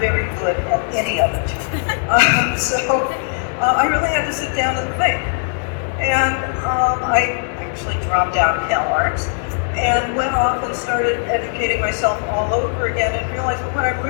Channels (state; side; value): silent; right; 67 dB below the other